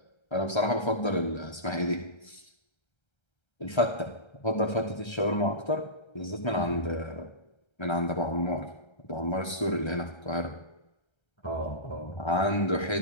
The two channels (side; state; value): right; late; 1.3 ms